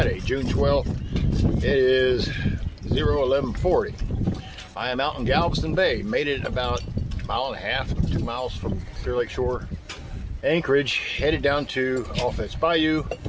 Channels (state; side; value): identical; both; correlation 1.00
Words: June 12th. It is 11:40. I am out in Galveston Bay. Made it about a mile and a half, 2 miles from Clear Lake Shore, Anchorage, headed down to Offense Bayou,